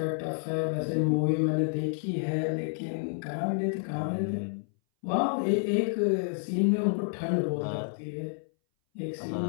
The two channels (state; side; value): silent; right; 58 dB below the other